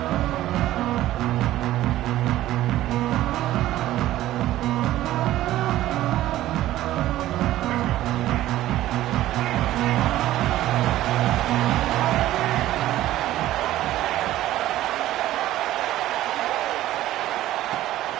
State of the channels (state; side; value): quieter; left; 14.6 dB